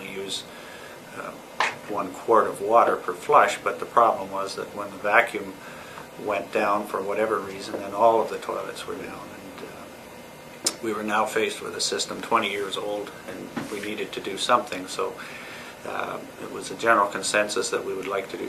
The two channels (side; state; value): both; identical; correlation 1.00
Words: use 1 quart of water per flush. But the problem was that when the vacuum went down for whatever reason, then all of the toilets were down, and we were now faced with a system 20 years old, and we needed to do something. So it was a general consensus that we would like to do